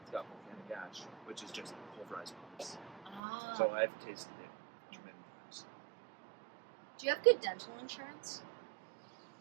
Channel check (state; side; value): drops out; left; at 3.2 s